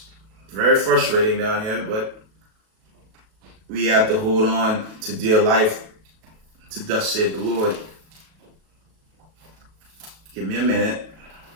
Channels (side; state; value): left; late; 37 ms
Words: very frustrating down here, but we have to hold on to dear life, to thus said the Lord. Give me a minute.